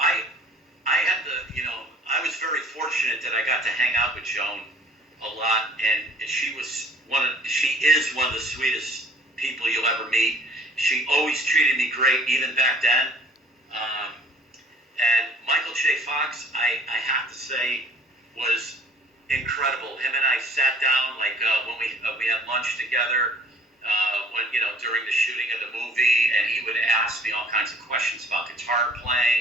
was very fortunate that I got to hang out with Joan a lot, and she is one of the sweetest people you'll ever meet. She always treated me great, even back then. And Michael J. Fox, I have to say, was incredible. Him and I sat down, when we had lunch together, during the shooting of the movie, and he would ask me all kinds of questions about guitar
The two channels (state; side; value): normal; both; correlation 0.54